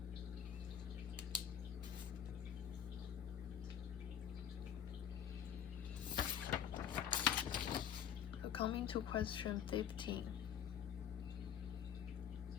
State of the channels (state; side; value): quieter; right; 9.1 dB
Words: So coming to question 15.